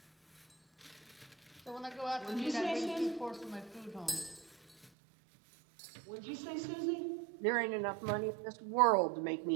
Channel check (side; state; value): left; drops out; at 4.9 s